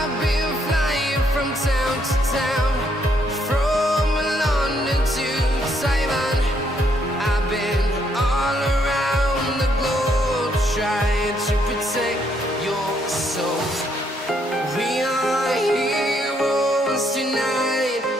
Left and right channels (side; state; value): both; normal; correlation 0.72